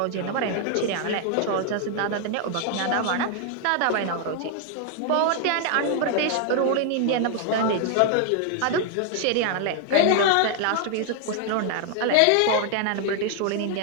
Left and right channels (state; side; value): different; both; correlation 0.00